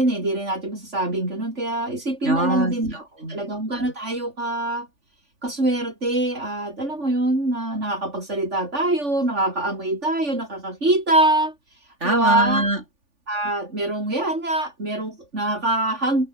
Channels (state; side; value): late; left; 3.5 ms